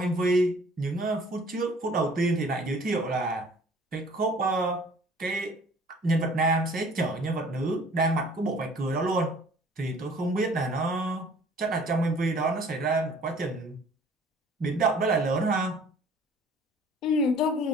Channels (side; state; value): both; normal; correlation 0.52